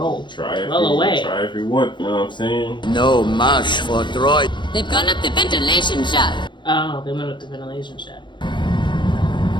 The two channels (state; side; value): late; right; 0.23 ms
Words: Try away. if you want, you know what I'm saying? No mash for droid. They've gone up the ventilation shaft. Oh, they went up the ventilation shaft.